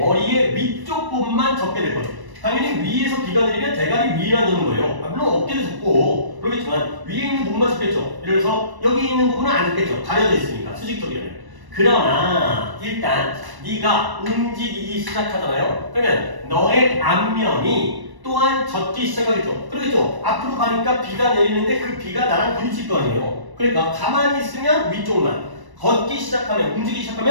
위쪽 부분만 접게 될 거죠. 당연히 위에서 비가 내리면 대가리 위에만 도는 거예요. 물론 어깨도 접고 그러겠지만 위에 있는 부분만 접겠죠. 예를 들어서 여기 있는 부분은 안 접겠죠. 가려져 있으니까 수직적이라면. 그러나 일단 네가 움직이기 시작하잖아요. 그러면 너의 앞면이 또한 젖기 시작하겠죠. 그러겠죠. 앞으로 가니까 비가 내리는데 그 비가 나랑 부딪힐 거 아니에요. 그러니까 가만히 있으면 위쪽만, 걷기 시작하면, 움직이기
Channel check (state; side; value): late; left; 1.1 ms